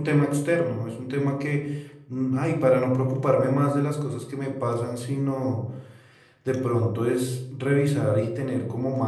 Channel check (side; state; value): both; identical; correlation 1.00